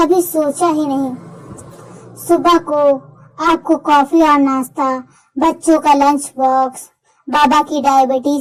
सोचा ही नहीं। सुबह को आपको कॉफी और नाश्ता, बच्चों का लंच बॉक्स, बाबा की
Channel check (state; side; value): identical; both; correlation 1.00